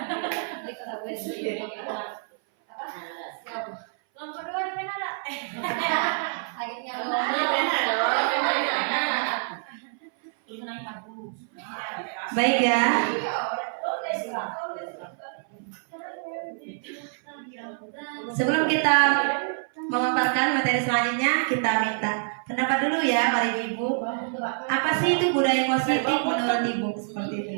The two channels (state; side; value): silent; left; 58 dB below the other